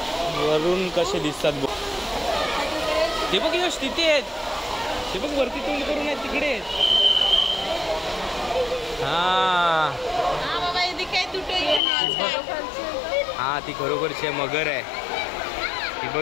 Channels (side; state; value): right; drops out; at 11.8 s